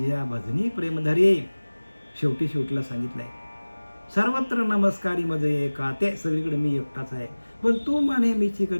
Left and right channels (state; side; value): inverted; both; correlation -1.00